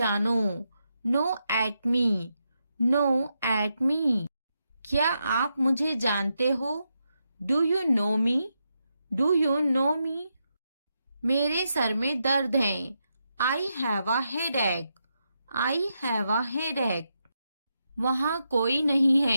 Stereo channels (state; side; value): inverted; both; correlation -0.84